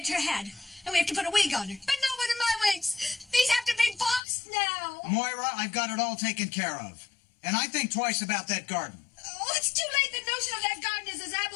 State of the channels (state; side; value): drops out; right; at 4.2 s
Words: her head, and we have to put a wig on her. But no one of my wigs. These have to be boxed now. Moira, I've got it all taken care of. And I think twice about that garden. Oh, it's too late. The notion of that garden is as